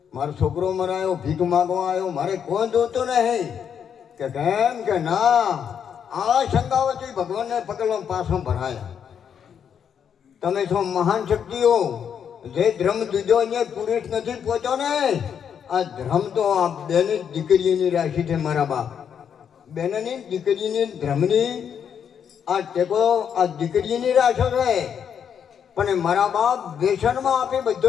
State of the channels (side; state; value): right; quieter; 7.9 dB